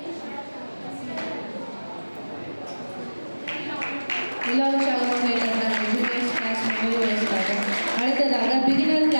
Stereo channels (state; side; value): inverted; both; correlation -1.00